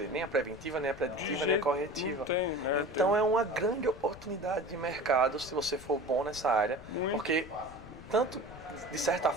nem a preventiva, nem a preditiva, nem a corretiva. Não tem, né? Então é uma grande oportunidade de mercado se você for bom nessa área. Muito. Porque tanto de certa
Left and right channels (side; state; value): left; noise; rumble, 17 dB below the sound